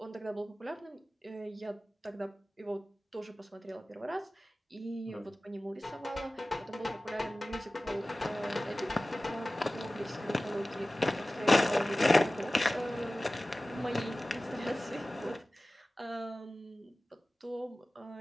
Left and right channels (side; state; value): both; normal; correlation 0.97